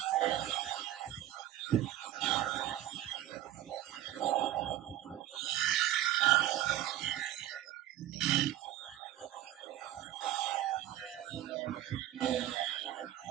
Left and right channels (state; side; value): quieter; left; 13.2 dB